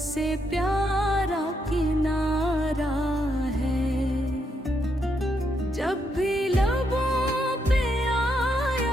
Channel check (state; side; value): normal; both; correlation 0.78